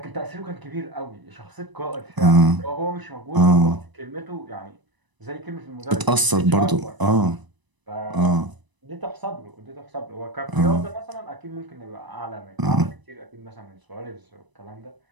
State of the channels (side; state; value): left; late; 1.0 ms